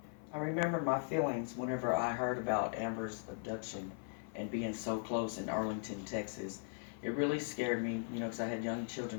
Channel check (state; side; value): silent; right; 52 dB below the other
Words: I remember my feelings whenever I heard about Amber's abduction and being so close in Arlington, Texas. It really scared me, because I had young